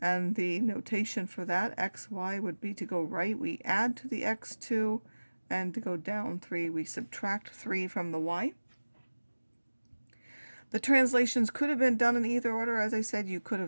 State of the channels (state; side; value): inverted; both; correlation -1.00